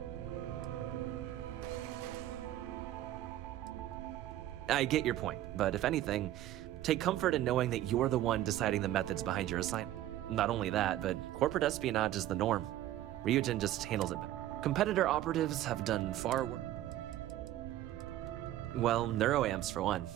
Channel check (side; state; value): left; quieter; 13.6 dB